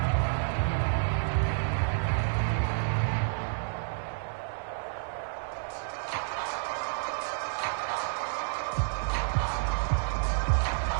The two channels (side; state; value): left; silent; 58 dB below the other